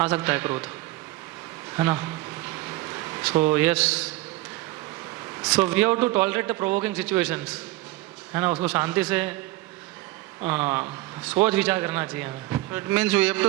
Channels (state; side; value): quieter; left; 18.4 dB